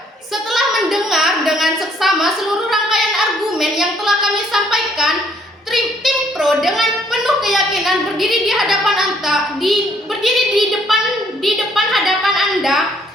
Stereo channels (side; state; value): both; normal; correlation 0.66